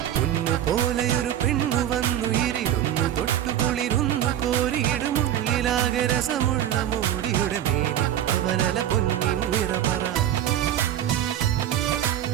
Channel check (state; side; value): quieter; left; 11.2 dB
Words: പൊന്നു പോലെയൊരു പെണ്ണു വന്നു ഇരുന്നു തൊട്ടുകുളിരുന്നു കോരിയിടുമുള്ളിലാകെ രസമുള്ള മോടിയുടെ മേനി പവനല പൊന്നിൻ നിറപറ